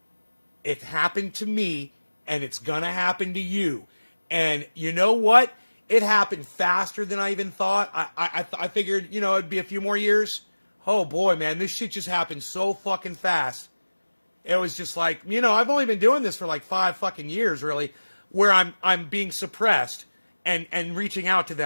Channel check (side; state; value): both; inverted; correlation -1.00